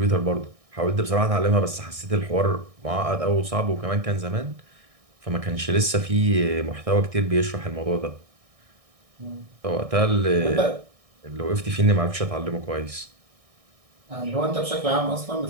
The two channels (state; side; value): late; left; 1.6 ms